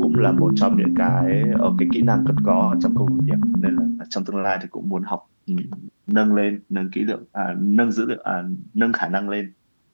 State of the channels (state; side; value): inverted; both; correlation -1.00